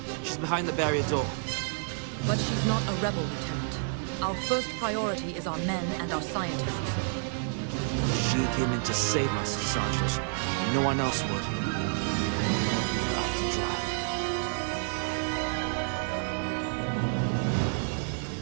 She's behind the barrier door. But she's not a rebel, Lieutenant. Our first priority is our men and our scientists. She came in to save us, Sergeant. No one else would. Don't leave her out to dry.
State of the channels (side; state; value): left; silent; 58 dB below the other